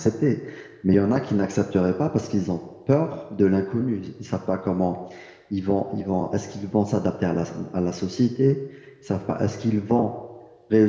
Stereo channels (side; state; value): both; identical; correlation 1.00